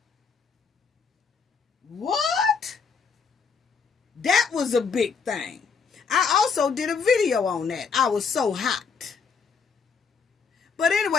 What? That was a big thing. I also did a video on that. I was so hot. But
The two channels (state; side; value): quieter; right; 5.6 dB